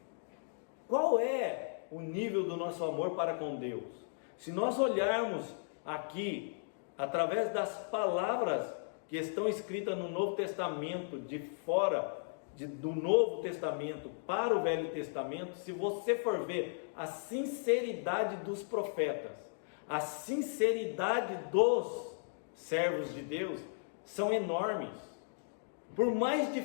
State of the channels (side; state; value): right; silent; digital silence